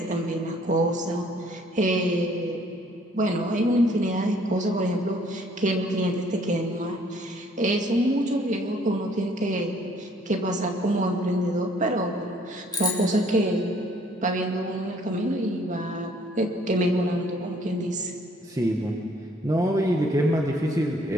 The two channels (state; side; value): normal; both; correlation 0.61